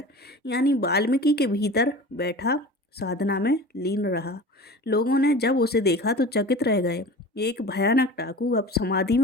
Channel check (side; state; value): both; normal; correlation 0.36